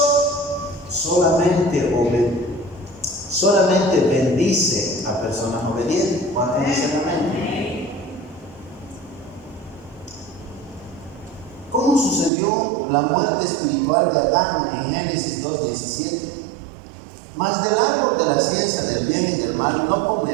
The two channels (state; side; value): drops out; left; at 12.3 s